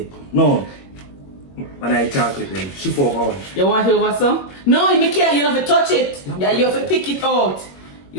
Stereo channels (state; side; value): late; right; 21 ms